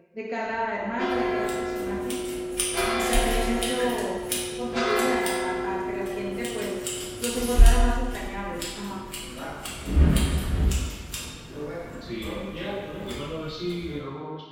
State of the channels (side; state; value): both; identical; correlation 1.00